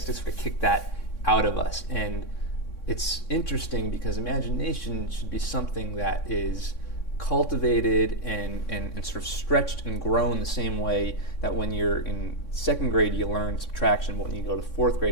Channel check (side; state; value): right; late; 3.6 ms